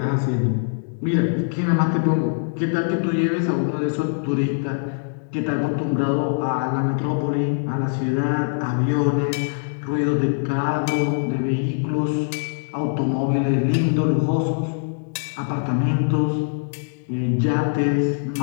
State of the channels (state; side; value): silent; right; digital silence